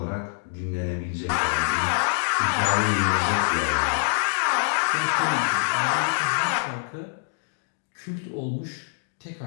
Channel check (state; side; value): silent; right; digital silence